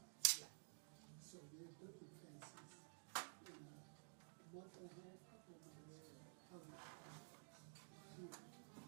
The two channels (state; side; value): silent; left; digital silence